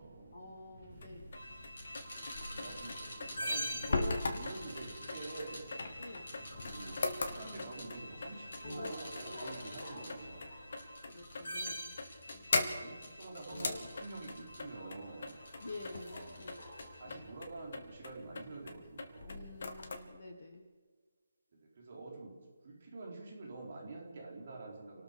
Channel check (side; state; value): both; inverted; correlation -0.87